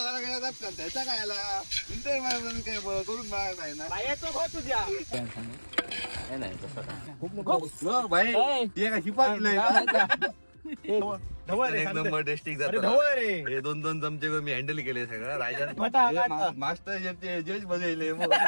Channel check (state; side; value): inverted; both; correlation -1.00